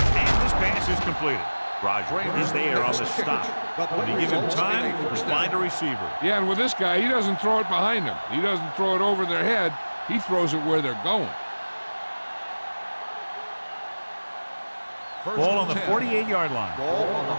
this pass is completed. Roger is there on the stop. When you give him time, he'll find a receiver. Yeah, and with this guy, he doesn't throw it behind him. He doesn't throw it over their head. He throws it where they're going. Ball on the 48-yard line. Ball on the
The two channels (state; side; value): inverted; both; correlation -1.00